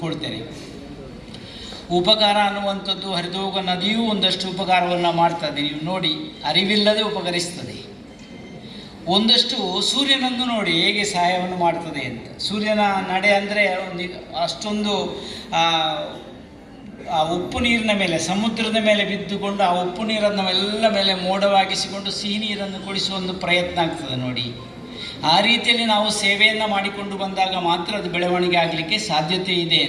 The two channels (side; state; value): both; identical; correlation 1.00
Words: ಉಪಕಾರ ಅನ್ನುವಂಥದ್ದು ಹರಿದೋಗ ನದಿಯೂ ಒಂದಷ್ಟು ಉಪಕಾರವನ್ನು ಮಾಡ್ತದೆ. ನೀವು ನೋಡಿ, ಅರಿವಿಲ್ಲದೆ ಉಪಕರಿಸ್ತದೆ. ಒಂದಷ್ಟು ಸೂರ್ಯನನ್ನು ನೋಡಿ ಹೇಗೆ ಸಹಾಯವನ್ನು ಮಾಡ್ತದೆ ಅಂತ. ಸೂರ್ಯನ ನಡೆ ಅಂದರೆ ಒಂದು ಅಷ್ಟೊಂದು ಆ ಉಪ್ಪು ನೀರಿನ ಮೇಲೆ, ಸಮುದ್ರದ ಮೇಲೆ ಬಿದ್ದುಕೊಂಡು ಆ ಉಪ್ಪು ನೀರನ್ನು ಎಲ್ಲ ಮೇಲೆ ಮೋಡವಾಗಿಸಿಕೊಂಡು ಸಿಹಿ ನೀರನ್ನು ಕುಡಿಸುವ ಒಂದು ಪ್ರಯತ್ನ ಆಗ್ತದೆ ನೋಡಿ. ಆ ರೀತಿಯಲ್ಲಿ ನಾವು ಸೇವೆಯನ್ನು ಮಾಡಿಕೊಂಡು ಬಂದಾಗ ಮಾತ್ರ ಅದು ಬೆಳವಣಿಗೆ ಆಗಲಿಕ್ಕೆ ಸಾಧ್ಯತೆ ಇದೆ